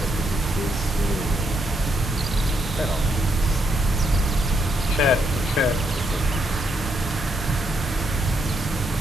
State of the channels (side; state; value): both; normal; correlation 0.77